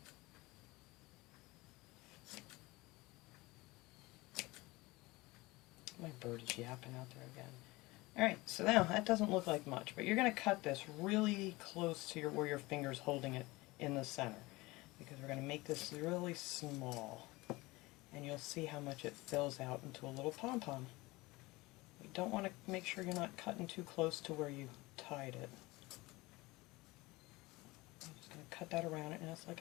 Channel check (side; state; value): right; quieter; 21.7 dB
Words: My bird is yapping out there again. Alright, so now that doesn't look like much, but you're going to cut this really close to where your finger's holding it in the center, because we're going to make this really small, and you'll see how much it fills out into a little pom-pom. You don't want to make sure you're not cutting too close to where you tied it. I'm just going to cut that around it, and it's